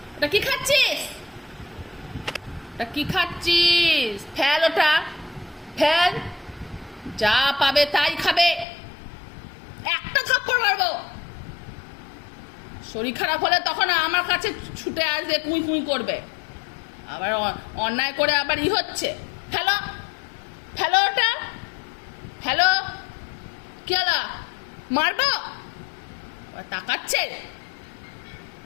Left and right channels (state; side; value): drops out; right; at 8.7 s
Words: ওটা কি খাচ্ছিস? ওটা কি খাচ্ছিস? ফেল ওটা, ফেল। যা পাবে তাই খাবে, একটা থাপ্পড় মারবো। শরীর খারাপ হলে তখন আমার কাছে ছুটে আসবে, কুঁই কুঁই করবে, আবার অন্যায় করে আবার হচ্ছে। ফেলো, ফেলো ওটা, ফেলো। কি হলো, মারবো? তাকাচ্ছে।